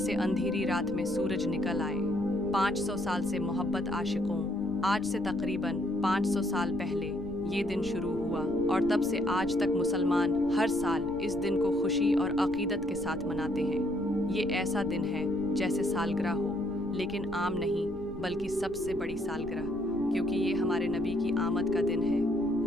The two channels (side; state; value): right; noise; rumble, 14 dB below the sound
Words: अंधेरी रात में सूरज निकल आए। 500 साल से मोहब्बत आशिकों, आज से तकरीबन 500 साल पहले ये दिन शुरू हुआ, और तब से आज तक मुसलमान हर साल इस दिन को खुशी और अकीदत के साथ मनाते हैं। ये ऐसा दिन है जैसे सालगिरह हो, लेकिन आम नहीं बल्कि सबसे बड़ी सालगिरह, क्योंकि ये हमारे नबी की आमद का दिन है।